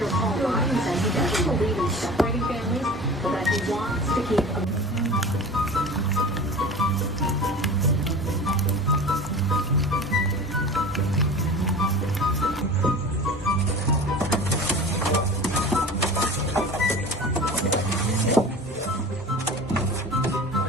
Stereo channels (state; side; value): normal; both; correlation 0.37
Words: Paul Ryan says he doesn't believe in separating families, but that he wants to keep